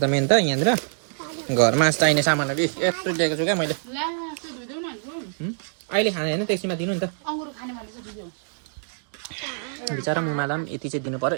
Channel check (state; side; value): silent; left; digital silence